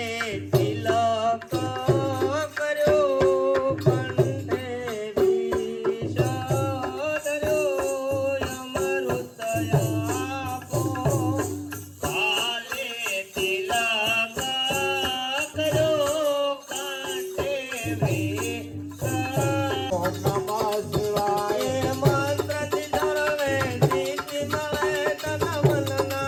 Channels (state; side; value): identical; both; correlation 1.00